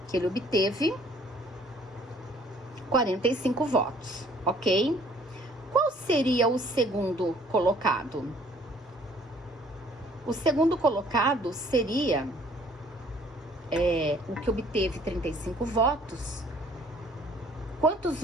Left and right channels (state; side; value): normal; both; correlation 0.57